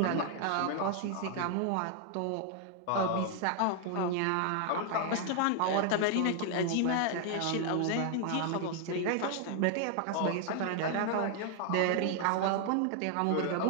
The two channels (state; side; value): different; both; correlation 0.00